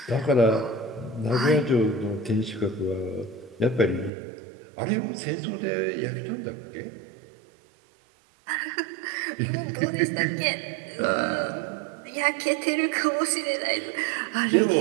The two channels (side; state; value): left; drops out; at 4.1 s